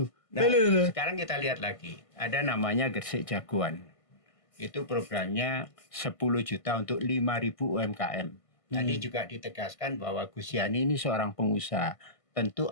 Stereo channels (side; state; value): right; late; 1.5 ms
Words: Nah, sekarang kita lihat lagi. Ada namanya Gresik Jagoan. Itu programnya 10 juta untuk 5.000 UMKM. Tadi juga ditegaskan bahwa Gus Yani ini seorang pengusaha, tentu